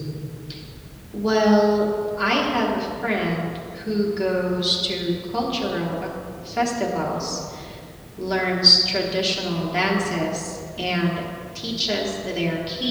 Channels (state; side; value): identical; both; correlation 1.00